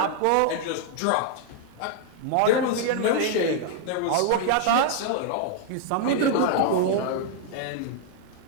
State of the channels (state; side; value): different; both; correlation 0.00